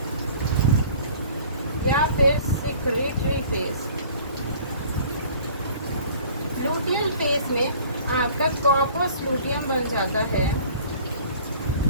या फिर सिक्रेटरी फेज। लूटियल फेज में आपका कॉर्पस लूटियम बन जाता है।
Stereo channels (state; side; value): inverted; both; correlation -0.49